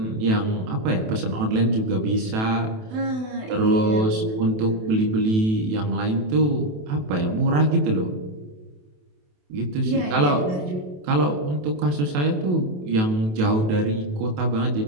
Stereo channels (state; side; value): late; left; 28 ms